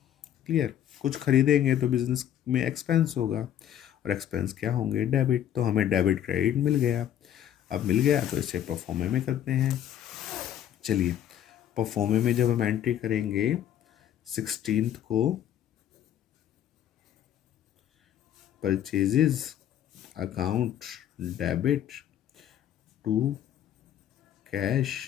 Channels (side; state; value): right; quieter; 10.6 dB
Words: क्लियर। कुछ खरीदेंगे तो बिजनेस में एक्सपेंस होगा, और एक्सपेंस क्या होंगे, डेबिट। तो हमें डेबिट क्रेडिट मिल गया। अब मिल गया तो इसे परफॉर्मे में करते हैं। चलिए, परफॉर्मे में जब हम एंट्री करेंगे 16 को purchases account debit to cash